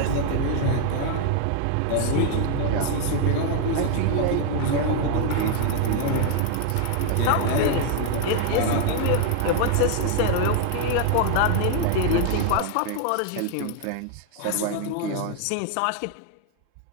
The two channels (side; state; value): both; different; correlation 0.00